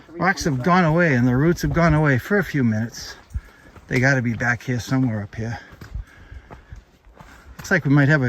gone away, and the roots have gone away for a few minutes. They got to be back here somewhere up here. Looks like we might have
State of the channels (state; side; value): identical; both; correlation 1.00